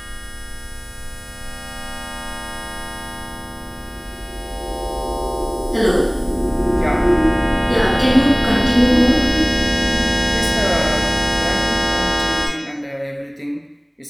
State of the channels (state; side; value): identical; both; correlation 1.00